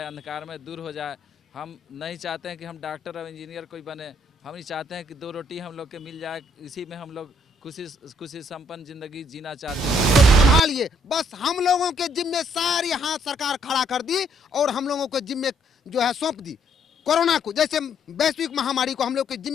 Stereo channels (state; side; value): normal; both; correlation 0.68